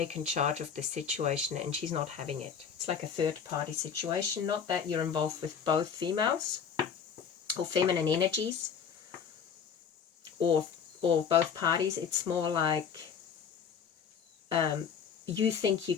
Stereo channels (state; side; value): quieter; right; 7.0 dB